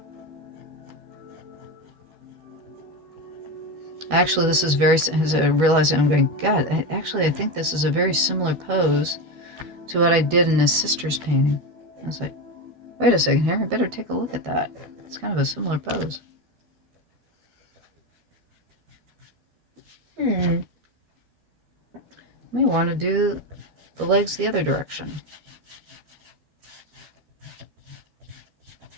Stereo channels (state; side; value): late; left; 12 ms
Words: Actually, this is very, as I realize I'm going, God, I think this is a very similar pose to what I did in his sister's painting. I was like, wait a second here, I better take a look at that. It's kind of a similar pose. May want to do the legs the other direction.